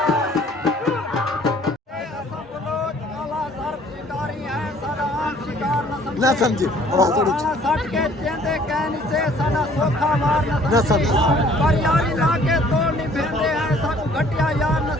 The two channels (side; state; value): both; normal; correlation 0.57